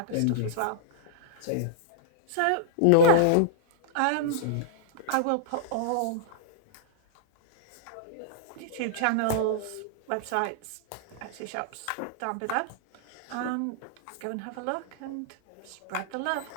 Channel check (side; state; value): both; different; correlation -0.02